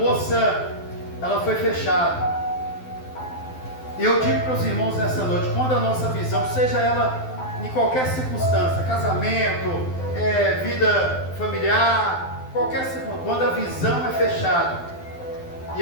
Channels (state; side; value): late; right; 12 ms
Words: ela foi fechada. E eu digo para os irmãos nessa noite, quando a nossa visão, seja ela em qualquer circunstância, casamento, vida familiar, qualquer circunstância, quando a visão é fechada, e